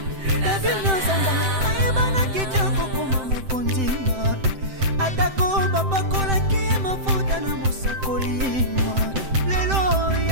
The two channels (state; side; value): late; left; 7.7 ms